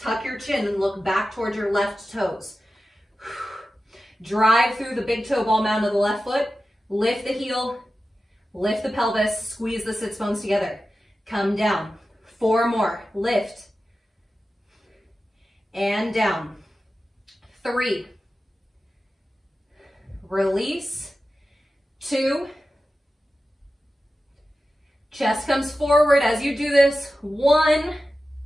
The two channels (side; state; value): both; normal; correlation 0.93